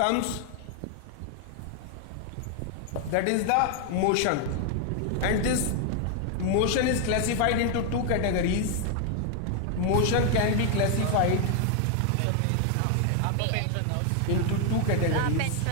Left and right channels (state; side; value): different; both; correlation 0.00